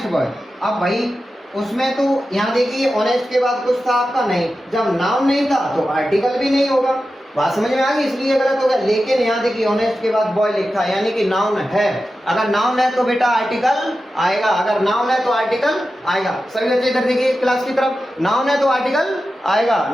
boy. अब भाई उसमें तो यहाँ देखिए ऑनेस्ट के बाद कुछ था आपका नहीं, जब नाउन नहीं था तो आर्टिकल भी नहीं होगा, बात समझ में आ गई, इसलिए गलत हो गया। लेकिन यहाँ देखिए ऑनेस्ट के बाद बॉय लिखा है, यानी कि नाउन है, अगर नाउन है तो बेटा आर्टिकल आएगा, अगर नाउन है तो आर्टिकल आएगा। सभी बच्चे इधर देखिए क्लास की तरफ, नाउन है तो आर्टिकल आएगा,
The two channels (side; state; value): both; normal; correlation 0.92